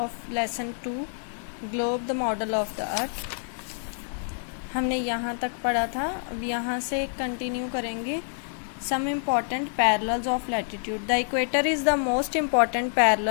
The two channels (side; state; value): right; silent; digital silence